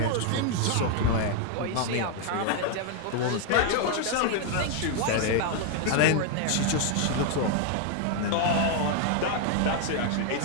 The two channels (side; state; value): both; different; correlation 0.00